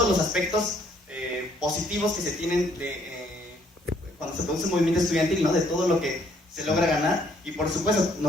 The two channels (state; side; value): normal; both; correlation 0.66